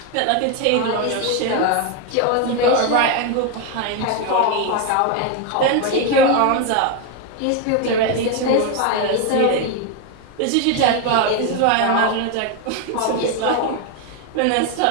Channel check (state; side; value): different; both; correlation 0.01